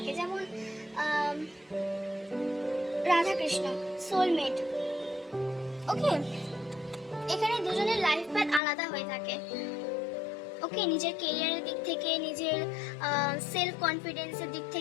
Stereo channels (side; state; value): right; drops out; at 8.6 s